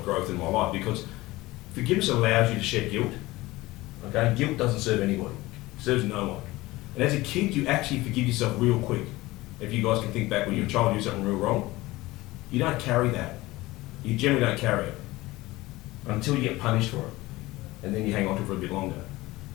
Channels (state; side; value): quieter; right; 19.4 dB